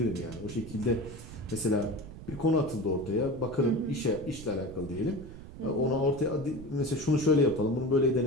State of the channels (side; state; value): right; noise; rumble, 14 dB below the sound